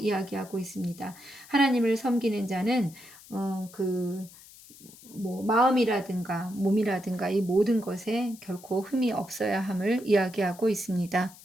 있습니다. 하나님을 섬기는 자는 마음이라든가 몸이라든가 이 모든 것에 결코 흠이 없어야 함을 이야기하고 있습니다.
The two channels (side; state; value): left; noise; hiss, 21 dB below the sound